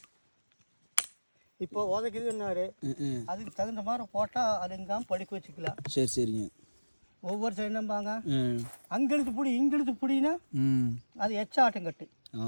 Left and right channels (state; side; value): inverted; both; correlation -1.00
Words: இப்போ உதைக்குதுன்னாரு, அதுக்கு தகுந்த மாதிரி போட்டால் அது எங்காம படிக்க வச்சுக்கலாம். சரி சரிங்க. ஒவ்வொரு சைடு நம்பாங்க அங்கெழுத்து பிடி இங்கெழுத்து பிடினா அது எச்சாட்டம் கட்டு.